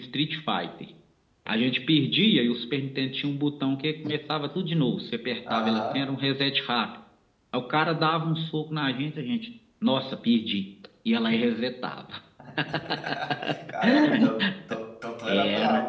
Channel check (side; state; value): both; identical; correlation 1.00